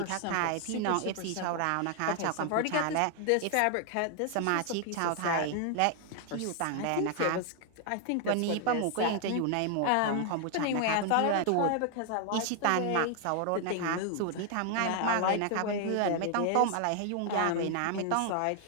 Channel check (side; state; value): both; different; correlation 0.00